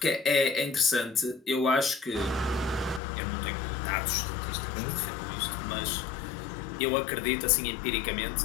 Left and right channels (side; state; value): right; drops out; at 3.0 s